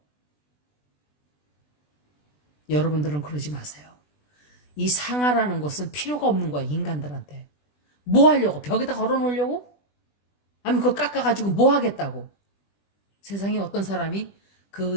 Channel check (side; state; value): right; late; 20 ms